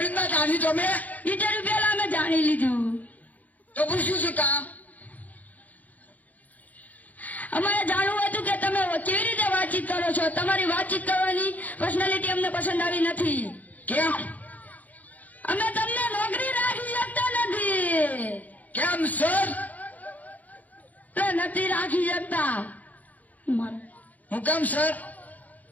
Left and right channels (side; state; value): right; late; 0.078 ms